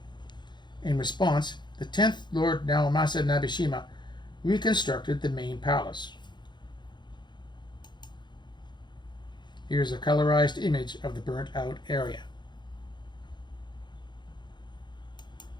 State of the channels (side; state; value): right; late; 0.22 ms